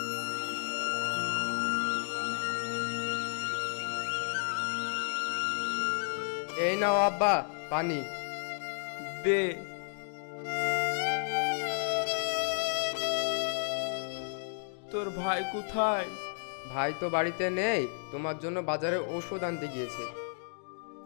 এই নাও আব্বা পানি। দে। তোর ভাই কোথায়? ভাই তো বাড়িতে নেই, তোমার জন্য বাজারে ওষুধ আনতে গিয়েছে।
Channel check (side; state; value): right; silent; digital silence